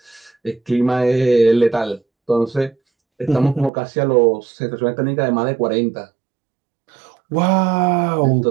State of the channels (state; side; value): drops out; left; at 3.7 s